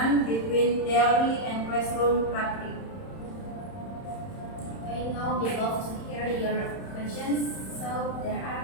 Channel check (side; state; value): right; late; 31 ms